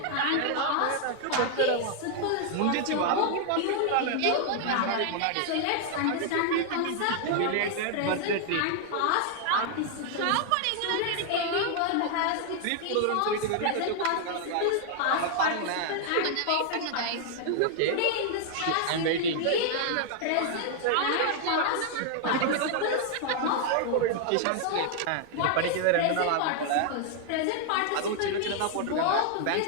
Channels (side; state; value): both; different; correlation 0.00